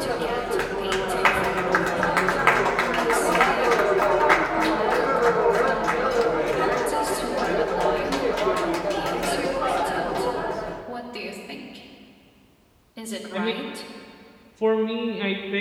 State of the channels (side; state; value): both; identical; correlation 1.00